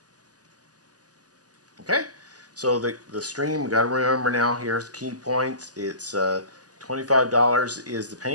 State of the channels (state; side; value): late; left; 0.67 ms